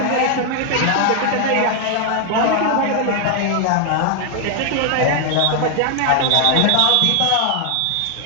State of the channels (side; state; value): both; different; correlation 0.00